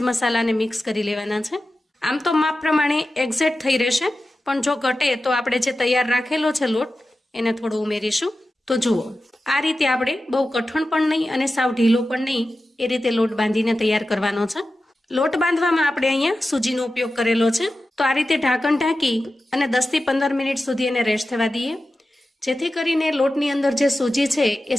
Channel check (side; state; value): both; normal; correlation 0.93